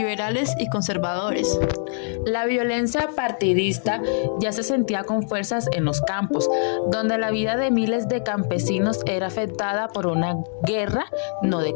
y conservadores. La violencia partidista ya se sentía con fuerzas en los campos, donde la vida de miles de campesinos era afectada por una guerra no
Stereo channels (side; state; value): right; silent; 63 dB below the other